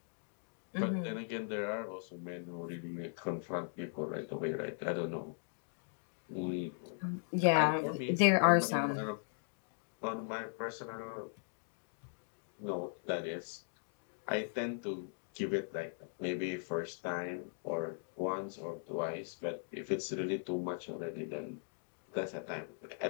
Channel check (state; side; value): silent; right; digital silence